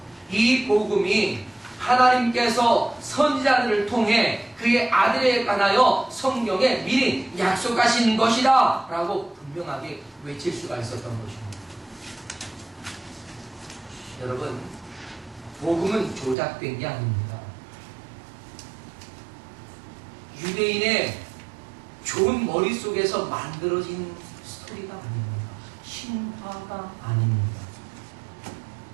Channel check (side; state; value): left; drops out; at 16.4 s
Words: 이 복음이 하나님께서 선지자들을 통해 그의 아들에 관하여 성경에 미리 약속하신 것이다 라고 분명하게 외칠 수가 있었던 것입니다. 여러분 복음은 조작된 게 아닙니다. 유대인의 좋은 머릿속에서 만들어진 스토리가 아닙니다. 신화가 아닙니다.